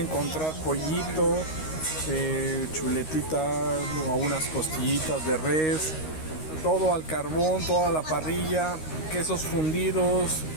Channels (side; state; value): right; late; 13 ms